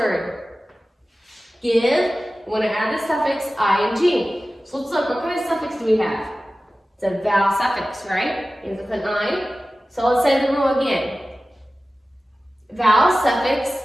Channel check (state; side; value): normal; both; correlation 0.96